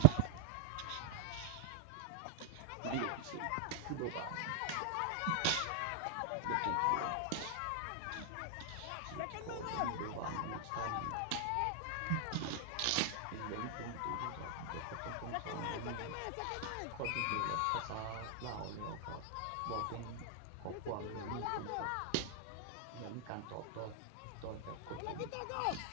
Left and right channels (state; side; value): different; both; correlation 0.00